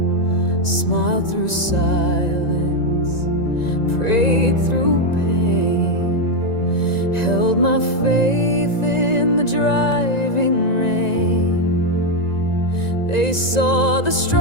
Smiled through silence, prayed through pain, held my faith in the driving rain. They saw the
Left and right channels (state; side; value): late; right; 1.9 ms